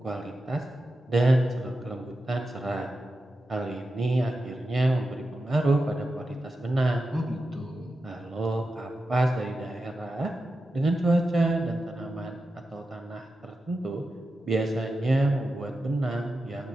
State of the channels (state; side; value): normal; both; correlation 0.91